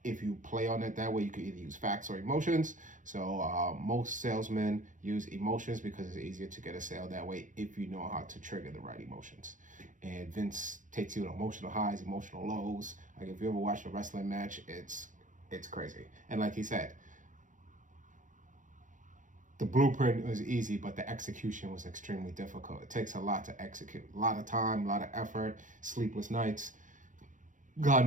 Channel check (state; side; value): late; left; 0.37 ms